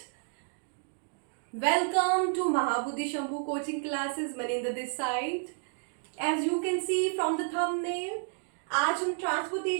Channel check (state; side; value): silent; left; 56 dB below the other